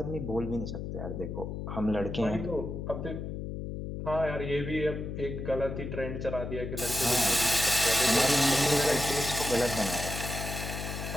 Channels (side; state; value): left; noise; hum, 6 dB below the sound